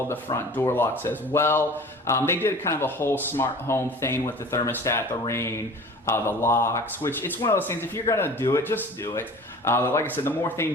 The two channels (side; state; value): both; normal; correlation 0.42